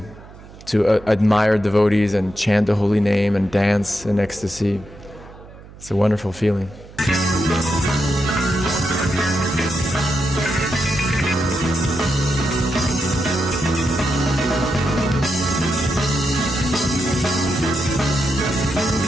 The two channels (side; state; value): right; noise; hum, 19 dB below the sound